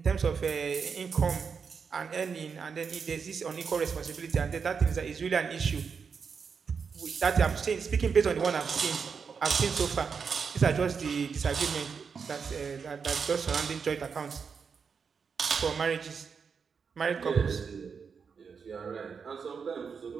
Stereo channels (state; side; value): quieter; left; 5.9 dB